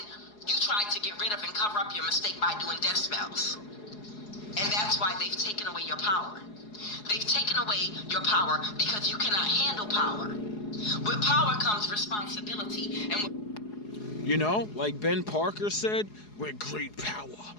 you tried to get rid of and cover up your mistake by doing death spells. And that's why they've taken away your power. They've taken away your power because you cannot handle power. With power comes responsibility. And you know, like Ben Parker said, with great power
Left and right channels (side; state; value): right; late; 4.8 ms